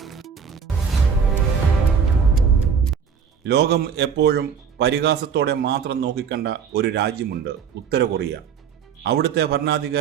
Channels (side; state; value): left; quieter; 6.7 dB